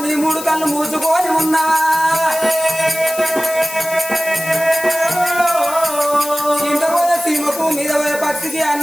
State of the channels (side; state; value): left; noise; hiss, 11 dB below the sound